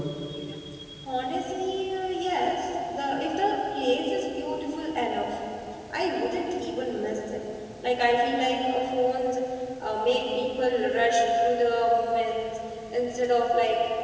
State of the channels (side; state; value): both; identical; correlation 1.00